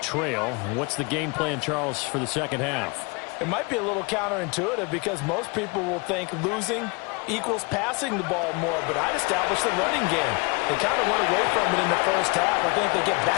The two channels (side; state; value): right; quieter; 28.9 dB